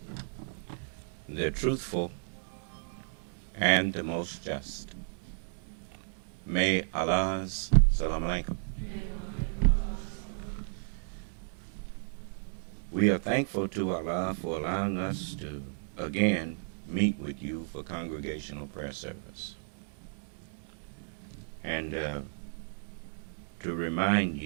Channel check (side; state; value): left; silent; digital silence